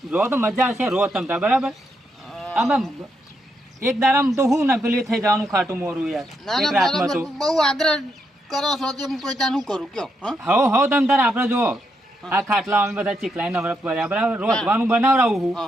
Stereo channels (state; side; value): normal; both; correlation 0.80